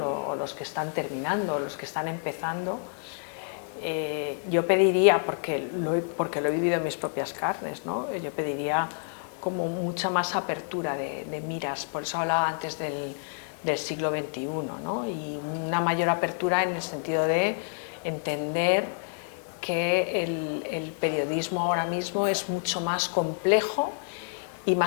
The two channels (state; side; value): silent; right; digital silence